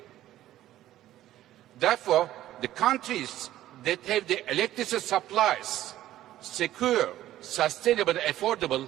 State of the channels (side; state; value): left; quieter; 13.7 dB